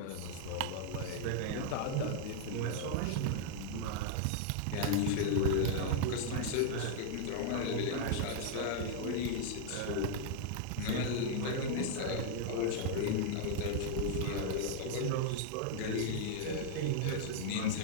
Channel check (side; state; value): both; different; correlation 0.00